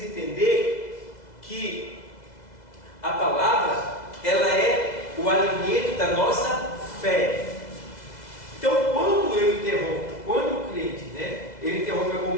entender que a palavra ela é o alimento da nossa fé. Então, quando eu interrompo, quando o crente, né, ele interrompe a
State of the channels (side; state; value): right; late; 2.0 ms